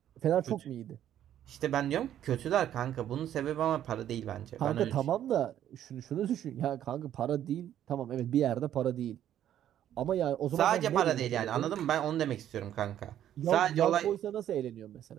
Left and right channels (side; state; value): left; quieter; 11.1 dB